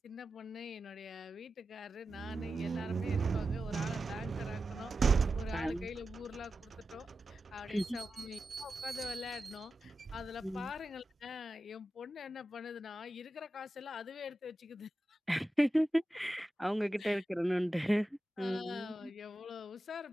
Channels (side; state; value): both; normal; correlation 0.92